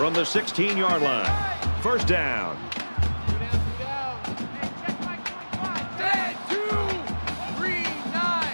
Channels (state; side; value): inverted; both; correlation -1.00